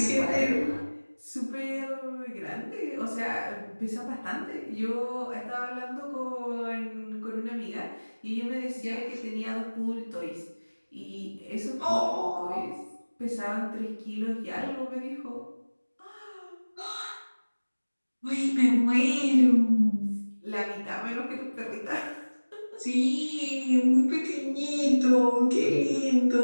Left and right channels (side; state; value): both; inverted; correlation -1.00